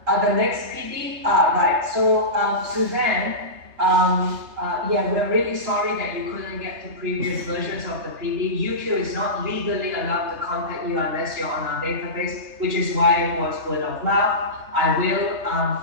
The next PD, right. So Suzanne, yeah, we're really sorry that you couldn't get to previous versions of the PD. UQ is not legally allowed to contact you unless you're on our database, which is why it was word of mouth. I will,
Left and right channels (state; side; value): late; left; 3.3 ms